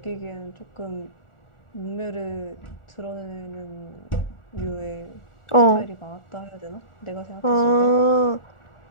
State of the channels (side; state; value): right; late; 1.4 ms